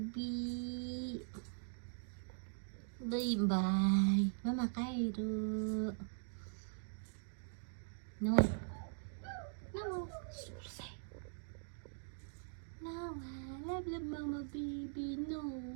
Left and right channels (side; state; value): left; silent; digital silence